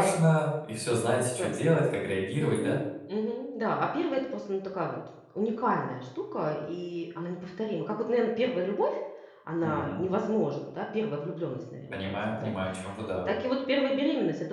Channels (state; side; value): identical; both; correlation 1.00